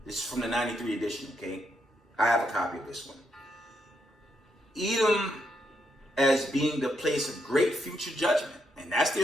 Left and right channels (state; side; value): normal; both; correlation 0.79